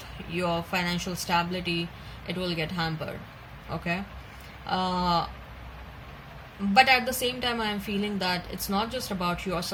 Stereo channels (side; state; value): both; identical; correlation 1.00